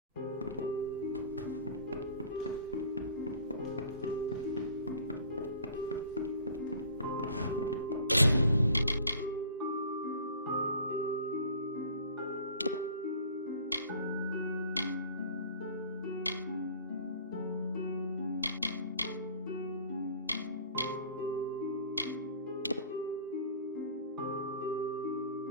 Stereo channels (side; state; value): both; inverted; correlation -0.47